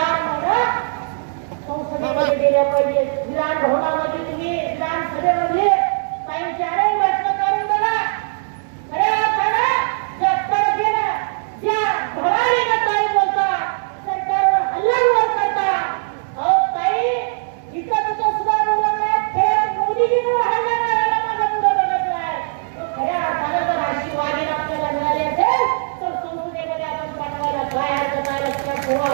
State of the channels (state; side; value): silent; left; digital silence